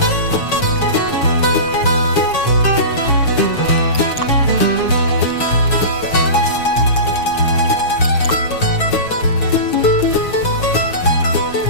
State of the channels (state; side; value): late; right; 6.9 ms